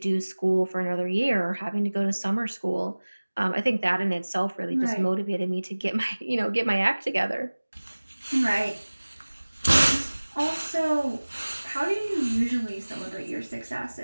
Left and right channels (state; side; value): inverted; both; correlation -1.00